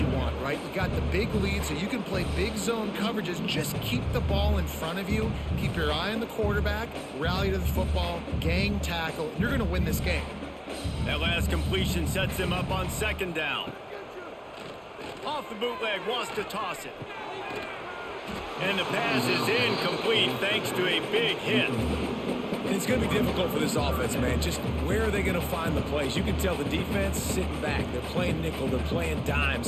want, right? You got the big lead, so you can play big zone coverages. Just keep the ball in front of you. Keep your eye on the quarterback. Rally to the football. Gang tackle. You're going to win this game. That last completion sets him up on second down. Off the bootleg, wants to toss it. And the pass is incomplete thanks to a big hit. It's going to be difficult for this offense, man. Just where are they going to find the plays? You can tell the defense sitting back. They're playing nickel. They're playing dime.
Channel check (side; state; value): both; identical; correlation 1.00